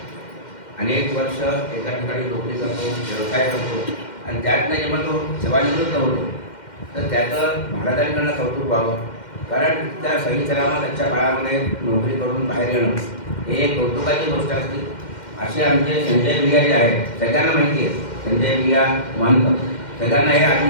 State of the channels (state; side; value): late; right; 2.1 ms